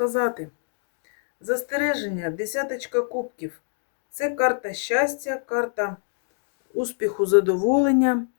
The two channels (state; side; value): silent; right; digital silence